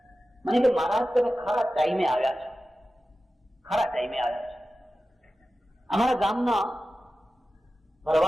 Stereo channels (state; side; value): normal; both; correlation 0.94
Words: મને કે મહારાજ તમે ખરા ટાઈમે આવ્યા છો, ખરા ટાઈમે આવ્યા છો. અમારા ગામના